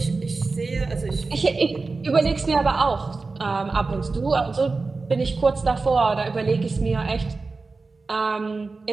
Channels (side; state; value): left; quieter; 3.9 dB